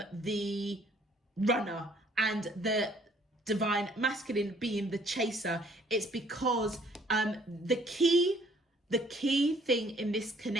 the runner and the divine masculine being the chaser. It's because the key thing in this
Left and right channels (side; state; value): both; normal; correlation 0.61